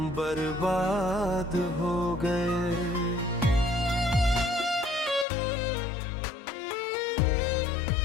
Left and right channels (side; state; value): right; drops out; at 5.2 s